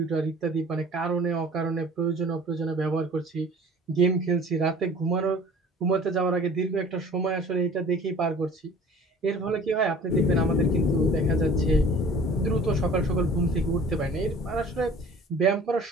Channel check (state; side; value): normal; both; correlation 0.47